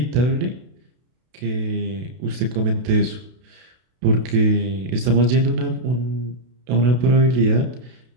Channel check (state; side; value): late; left; 32 ms